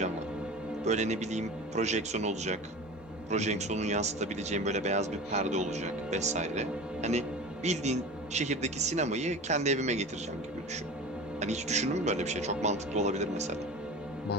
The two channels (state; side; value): normal; both; correlation 0.34